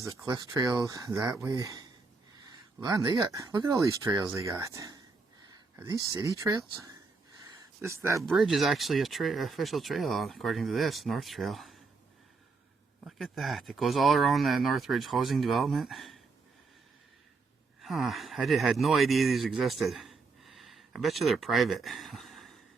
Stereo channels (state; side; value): quieter; left; 4.2 dB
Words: the cliff trail that way. Man, look at all these trails they got. Are these city trails? That bridge is actually a official trail according to this, North Trail. Look at that. It goes all around the Northridge housing development. Huh, I had no idea these existed. I bet you they're private.